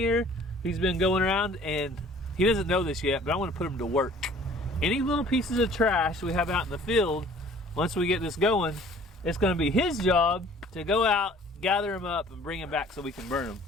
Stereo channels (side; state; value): both; normal; correlation 0.52